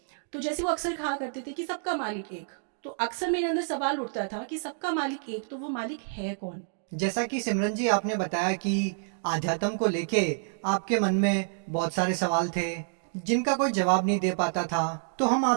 तो जैसे वो अक्सर कहा करते थे कि सबका मालिक एक, तो अक्सर मेरे अंदर सवाल उठता था कि सबका मालिक एक, तो वो मालिक है कौन। जैसा कि सिमरन जी आपने बताया कि आध्यात्म को लेके आपके मन में बहुत सारे सवाल थे जिनका कोई जवाब नहीं दे पाता था, तो हम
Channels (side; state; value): left; silent; digital silence